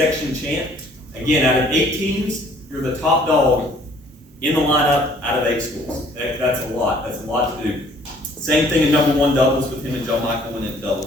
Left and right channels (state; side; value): normal; both; correlation 0.58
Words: champ. Again, out of 8 teams, you're the top dog in the lineup out of 8 schools. That's a lot. That's a lot to do. Same thing in number 1 doubles with him and John Michael winning